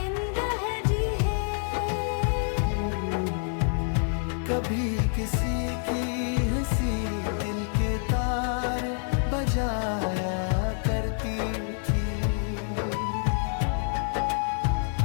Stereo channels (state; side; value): silent; right; 60 dB below the other